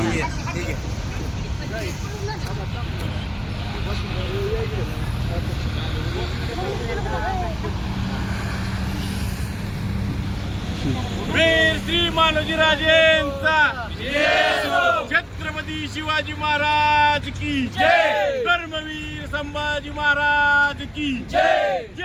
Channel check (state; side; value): identical; both; correlation 1.00